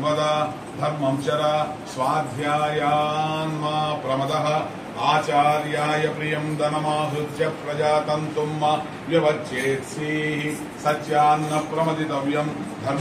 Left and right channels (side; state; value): both; identical; correlation 1.00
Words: వద ధర్మం చర స్వాధ్యాయాన్మా ప్రమదః ఆచార్యాయ ప్రియం ధనమాహృత్య ప్రజాతంతుం వ్యవచ్చేత్సి సత్యాన్న ప్రమదితవ్యం